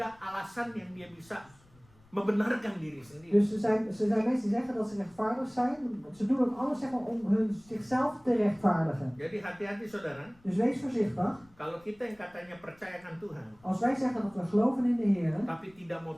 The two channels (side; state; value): left; noise; rumble, 29 dB below the sound